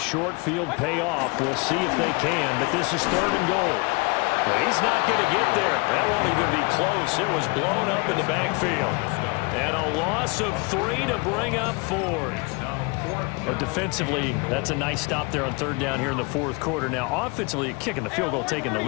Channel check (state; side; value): quieter; right; 28.9 dB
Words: field pay off. We'll see if they can, but this is 3rd and goal. Well, he's not going to get there. That won't even be close. It was blown up in the backfield. And a loss of 3 to bring up 4. But defensively, that's a nice stop there on 3rd down here in the fourth quarter. Now, offensively, kicking the field goal, taking the